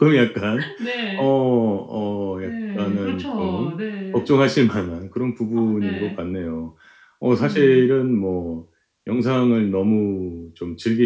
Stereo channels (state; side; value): identical; both; correlation 1.00